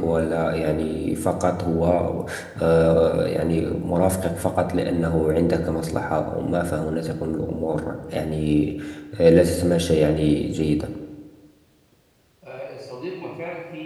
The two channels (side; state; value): both; identical; correlation 1.00